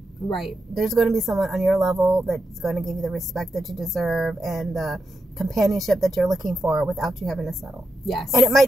Right. There's going to be someone on your level that's going to give you the respect that you deserve and the companionship that you're looking for without you having to settle. Yes. And it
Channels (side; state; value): both; normal; correlation 0.87